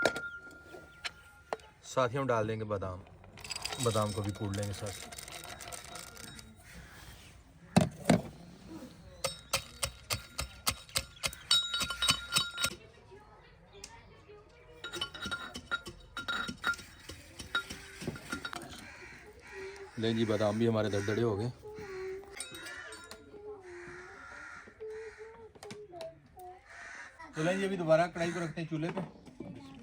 साथ ही हम डाल देंगे बादाम। बादाम को भी कूट लेंगे साथ। लें जी, बादाम भी हमारे दरदरे हो गए। तो लें जी, अभी दोबारा कढ़ाई को रखते हैं चूल्हे पे।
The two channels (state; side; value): identical; both; correlation 1.00